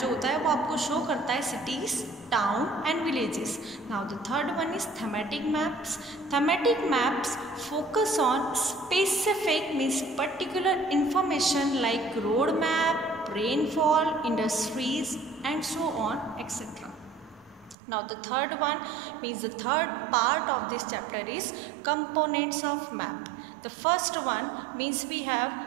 जो होता है वो आपको शो करता है cities, town and villages. Now the third one is thematic maps. Thematic maps focus on specific means particular information like road map, rainfall, industries and so on etc. Now the third one means the third part of this chapter is components of map. The first one means we have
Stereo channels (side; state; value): left; drops out; at 17.8 s